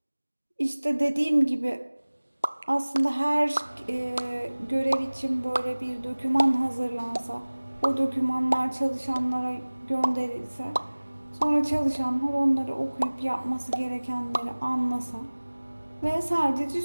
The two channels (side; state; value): both; inverted; correlation -1.00